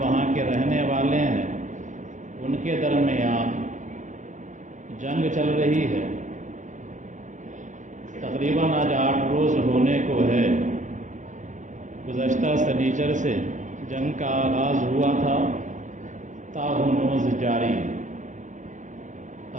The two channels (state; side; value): late; left; 0.36 ms